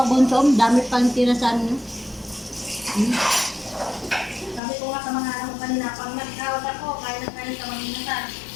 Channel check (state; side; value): drops out; right; at 4.6 s